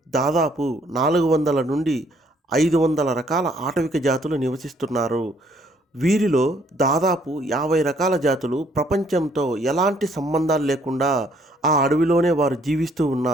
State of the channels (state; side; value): normal; both; correlation 0.65